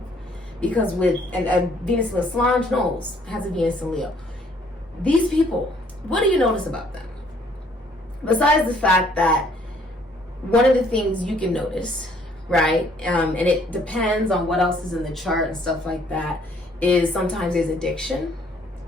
Because with and Venus and Leo, Solange Knowles has a Venus and Leo. These people, what do you notice about them? Besides the fact that one of the things you can notice, right, and it depends on what else is in the chart and stuff like that, is sometimes there's addiction,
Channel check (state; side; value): normal; both; correlation 0.62